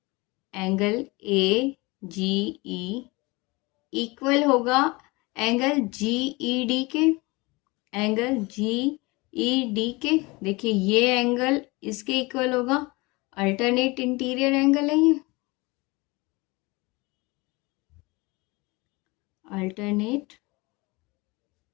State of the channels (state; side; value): quieter; right; 24.4 dB